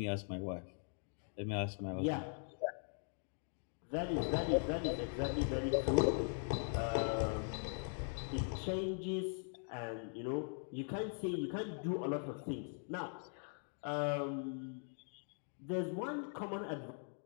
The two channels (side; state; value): right; silent; 50 dB below the other